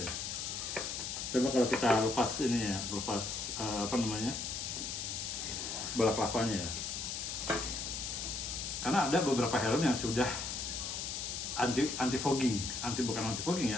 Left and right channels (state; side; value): noise; left; hiss, 4 dB below the sound